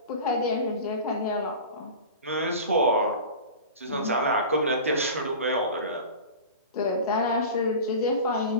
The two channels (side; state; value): both; inverted; correlation -0.33